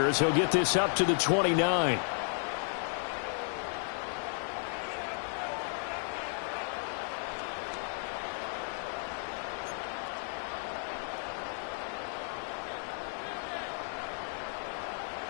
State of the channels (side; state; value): right; silent; 55 dB below the other